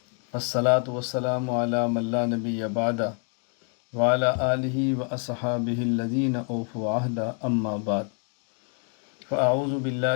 والصلاة والسلام علی من لا نبی بعدہ وعلی آلہ واصحابہ الذین اوفوا عہدہ اما بعد فاعوذ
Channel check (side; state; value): right; quieter; 38.6 dB